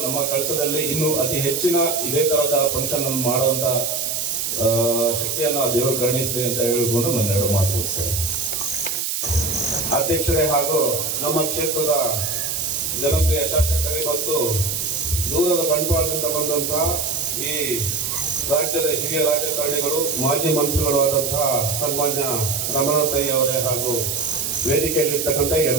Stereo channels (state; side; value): noise; right; hiss, 1 dB below the sound